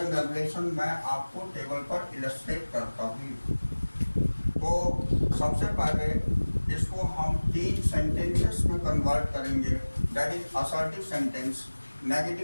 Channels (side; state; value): both; inverted; correlation -1.00